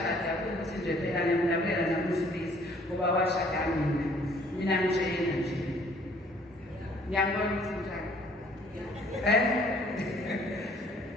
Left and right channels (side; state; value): both; normal; correlation 0.59